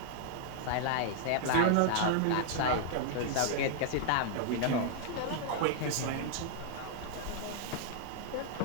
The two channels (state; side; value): different; both; correlation -0.01